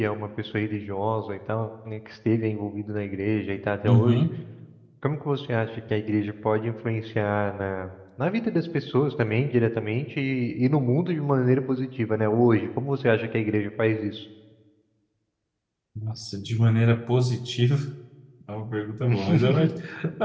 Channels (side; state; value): both; identical; correlation 1.00